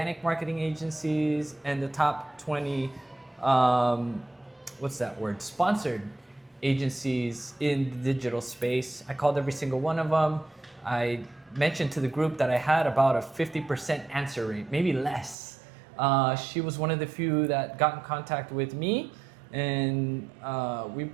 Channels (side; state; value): left; drops out; at 15.4 s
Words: marketing agencies and the top 20 sponsored agencies in the digital space. I called every single one of them. I mentioned to the group that I had about a 50% answer rate, maybe less. She was one of the few that got in contact with me, and we're